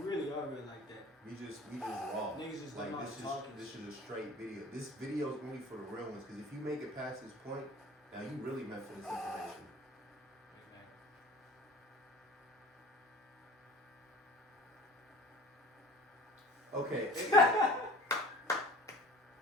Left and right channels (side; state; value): both; normal; correlation 0.44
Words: really are real like that. We just raw. Niggas just like talking. This is a straight video. This video is only for the real ones. Because if you make it past this point, now you really meant for this information. Okay.